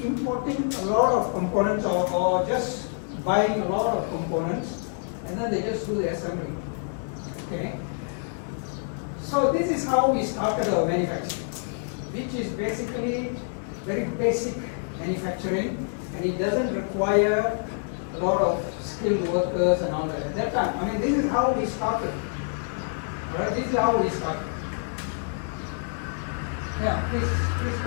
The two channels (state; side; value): silent; right; 58 dB below the other